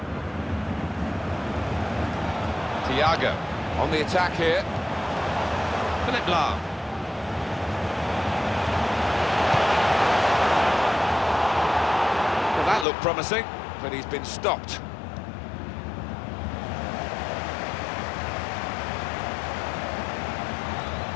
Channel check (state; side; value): drops out; right; at 12.9 s